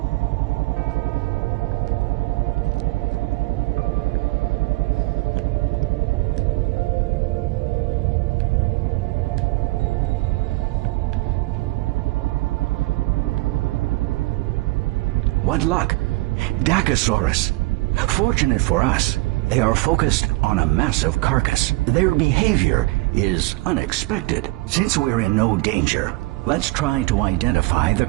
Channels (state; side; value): quieter; left; 21.6 dB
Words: What luck! Dacosaurus. Fortunate for us, they are focused on a massive carcass. Their behavior is unexpected. Since we're in no danger, let's try to identify the